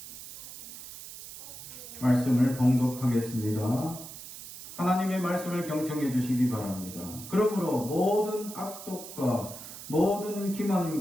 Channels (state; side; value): noise; right; hiss, 13 dB below the sound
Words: 말씀을 봉독하겠습니다. 하나님의 말씀을 경청해 주시기 바랍니다. 그러므로 모든 악독과 모든